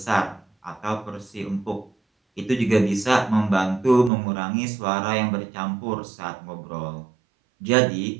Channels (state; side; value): drops out; left; at 4.1 s